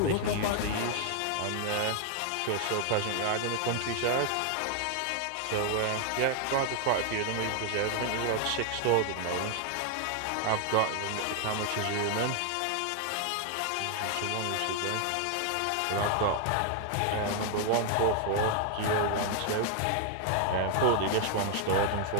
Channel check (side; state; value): both; different; correlation 0.00